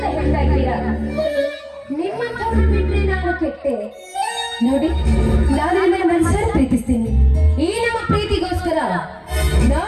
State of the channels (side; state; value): both; identical; correlation 1.00